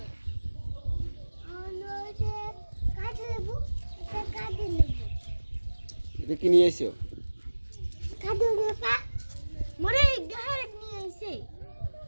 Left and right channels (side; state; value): both; inverted; correlation -1.00